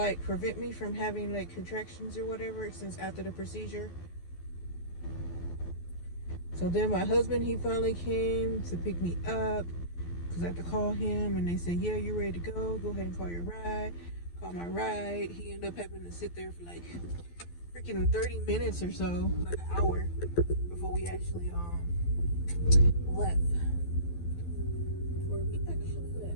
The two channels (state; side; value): late; right; 12 ms